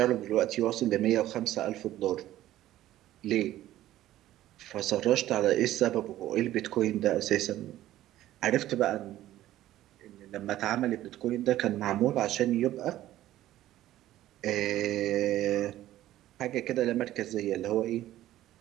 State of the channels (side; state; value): left; quieter; 14.1 dB